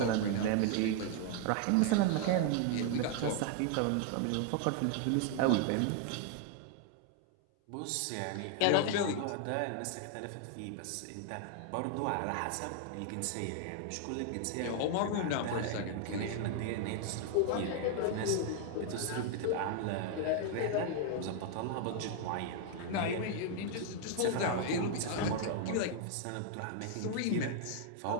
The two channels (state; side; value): different; both; correlation 0.00